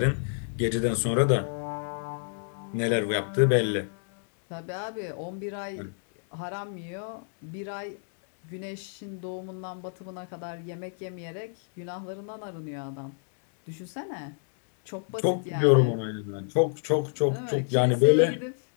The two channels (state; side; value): silent; right; 59 dB below the other